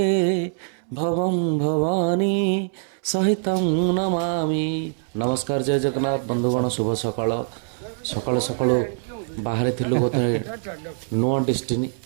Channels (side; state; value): left; silent; 63 dB below the other